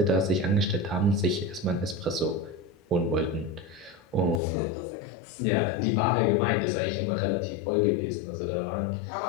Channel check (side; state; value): right; drops out; at 4.4 s